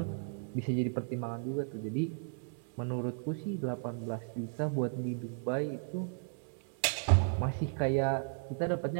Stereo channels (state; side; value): silent; left; 55 dB below the other